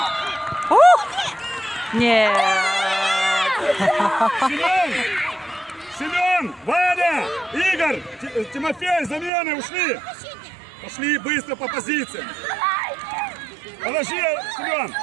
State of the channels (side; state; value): left; drops out; at 9.3 s